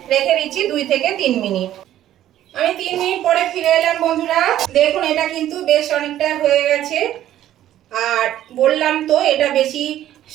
রেখে দিচ্ছি 2 থেকে 3 মিনিট। আমি 3 মিনিট পরে ফিরে এলাম বন্ধুরা, দেখুন এটা কিন্তু বেশ অনেকটা হয়ে গেছে। আর বললাম তো এটা বেশি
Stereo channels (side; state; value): left; quieter; 12.5 dB